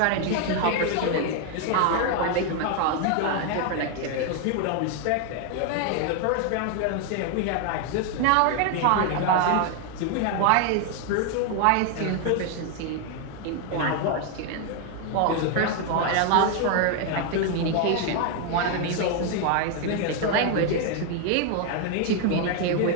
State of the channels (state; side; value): different; both; correlation 0.01